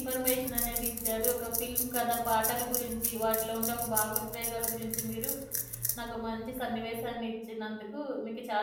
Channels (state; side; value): identical; both; correlation 1.00